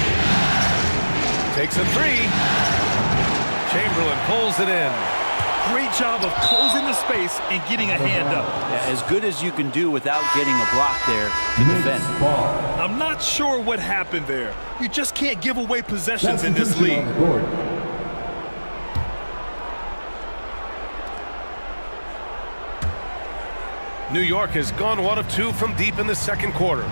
Takes a 3. Chamberlain pulls it in. Great job of closing the space and getting a hand up. Yeah, as good as you can do without getting a block there to defend. Knicks ball. I'm not sure what happened there. You just can't give away possessions in this Substitution league. on the court. New York has gone 1 of 2 from deep in the second quarter.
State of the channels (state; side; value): inverted; both; correlation -1.00